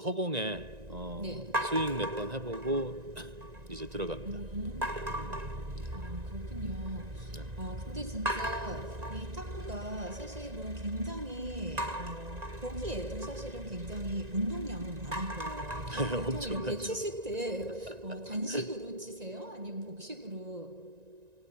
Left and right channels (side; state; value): left; late; 1.9 ms